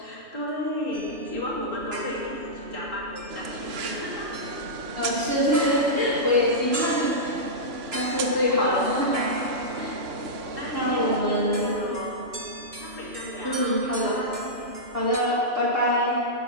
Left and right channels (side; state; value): left; late; 2.9 ms